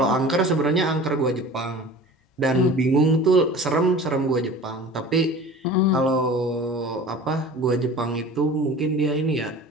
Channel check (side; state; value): both; normal; correlation 0.40